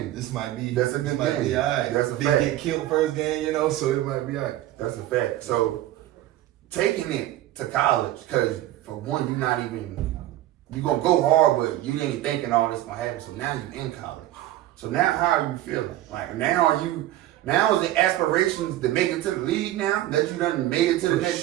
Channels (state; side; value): quieter; left; 14.5 dB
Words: This might be. That's a good game. Be all right. That's a Didn't fact. get killed first game, you know, so it might be all right. That's a fact. So, taking it to college, because for one, you're going to go hard, but you ain't thinking all this going to happen. So now you're in college. So now how are you feeling? Like now is the aspirations to make it to the league now that you done made it to the